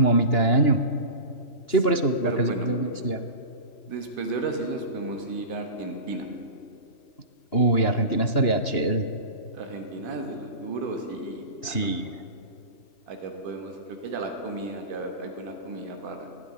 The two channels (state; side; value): late; right; 2.9 ms